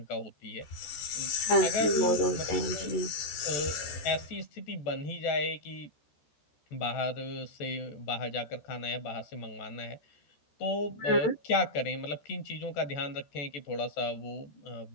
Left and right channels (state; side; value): late; right; 14 ms